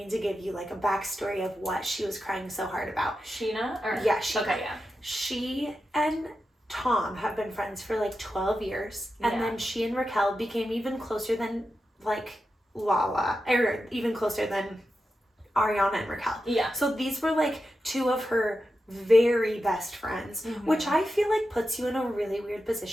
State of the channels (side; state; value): both; normal; correlation 0.90